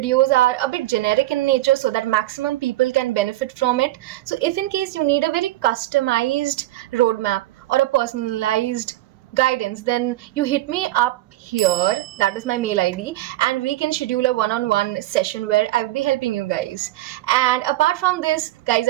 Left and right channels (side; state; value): left; quieter; 16.2 dB